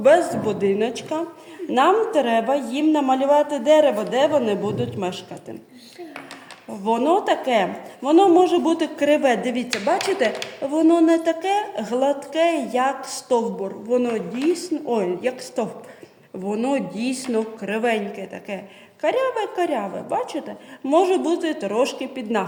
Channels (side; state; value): both; identical; correlation 1.00